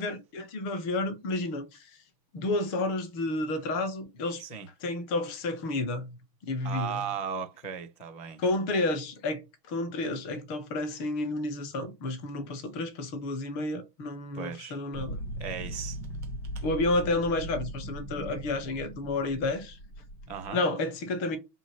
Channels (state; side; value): late; right; 6.2 ms